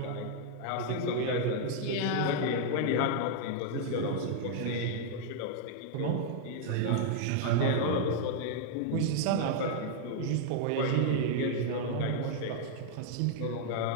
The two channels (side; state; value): both; different; correlation -0.01